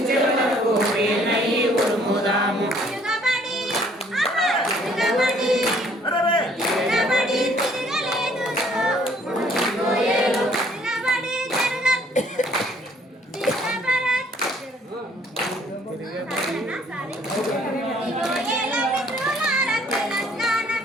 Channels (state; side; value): normal; both; correlation 0.61